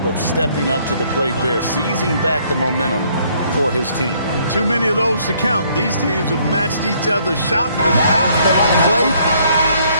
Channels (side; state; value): both; inverted; correlation -0.65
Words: of stepping up to the plate there, seizing back the momentum for his team. Too many of those to count. These teams have matched each other shot for shot. Play.